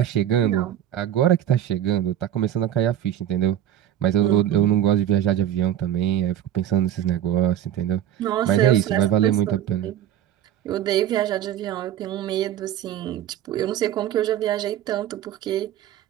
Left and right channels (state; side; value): quieter; left; 11.1 dB